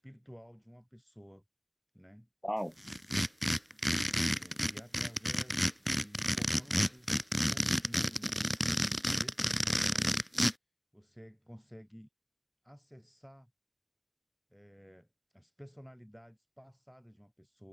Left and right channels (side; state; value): both; identical; correlation 1.00